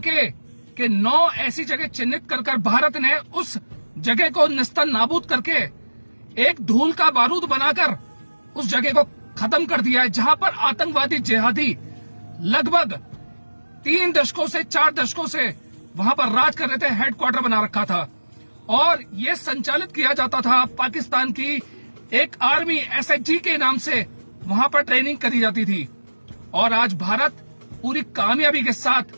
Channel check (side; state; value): both; inverted; correlation -1.00